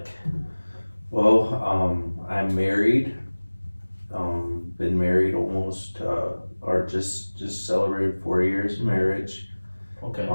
Well, I'm married. Been married almost, or just celebrated 4 years of marriage. Okay.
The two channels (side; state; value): both; inverted; correlation -1.00